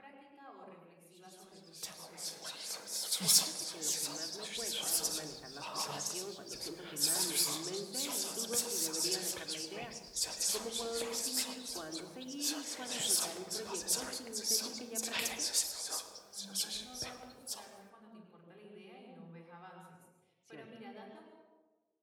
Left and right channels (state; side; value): identical; both; correlation 1.00